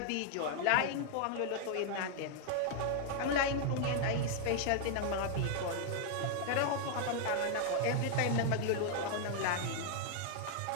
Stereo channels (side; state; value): both; different; correlation 0.00